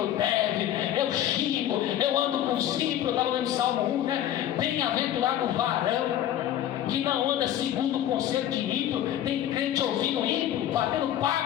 deve, eu xingo, eu ando com os ímpios. Eu estava lendo Salmo 1, né? Bem-aventurado o varão que não anda segundo o conselho de ímpio. Tem crente ouvindo ímpio, batendo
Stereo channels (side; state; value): right; quieter; 11.7 dB